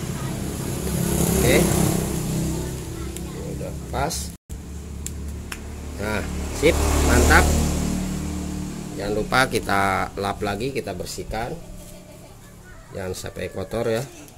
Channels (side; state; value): both; identical; correlation 1.00